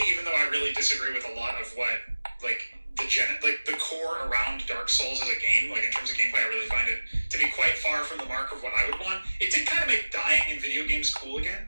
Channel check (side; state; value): both; inverted; correlation -1.00